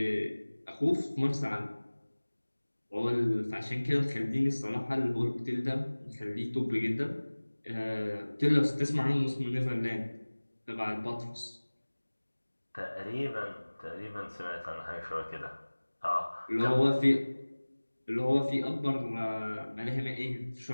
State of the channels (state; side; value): inverted; both; correlation -1.00